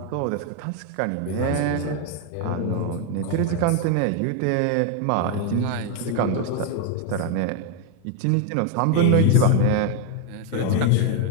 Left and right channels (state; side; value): different; both; correlation 0.01